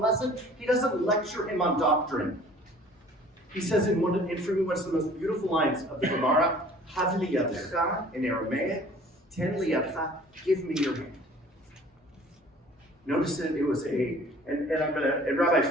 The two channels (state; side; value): normal; both; correlation 0.50